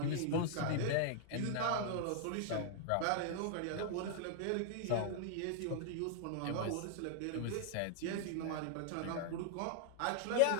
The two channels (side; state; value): both; different; correlation -0.01